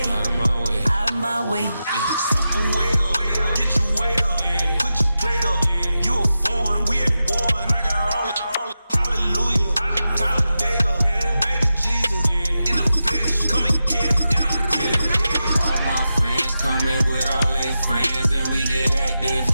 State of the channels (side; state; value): both; inverted; correlation -0.91